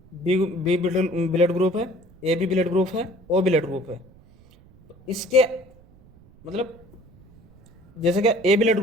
बी ब्लड ग्रुप है, ए बी ब्लड ग्रुप है, ओ ब्लड ग्रुप है। तो इसके मतलब जैसे कि ए ब्लड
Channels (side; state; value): right; noise; rumble, 26 dB below the sound